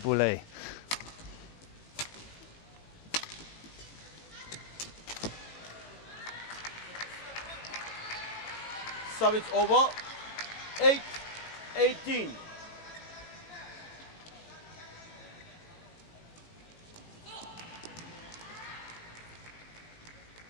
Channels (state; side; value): late; right; 18 ms